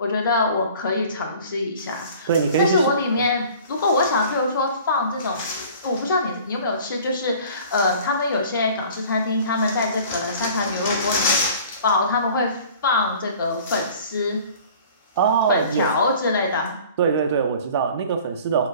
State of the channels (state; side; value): inverted; both; correlation -0.47